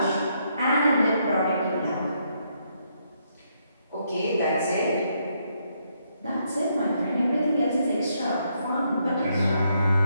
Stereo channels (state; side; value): inverted; both; correlation -0.76